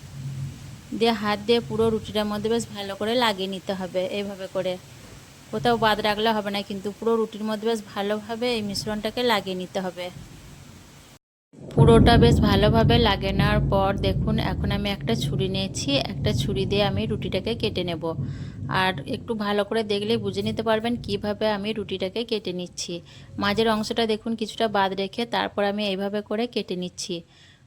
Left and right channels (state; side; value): identical; both; correlation 1.00